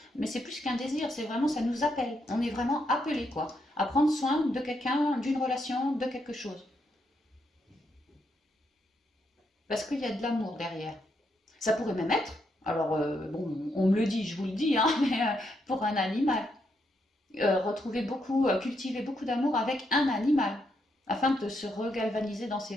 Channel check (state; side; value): normal; both; correlation 0.78